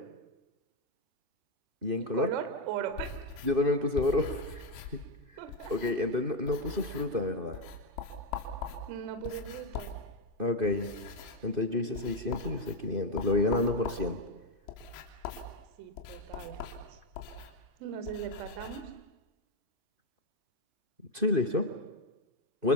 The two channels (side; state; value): left; late; 2.5 ms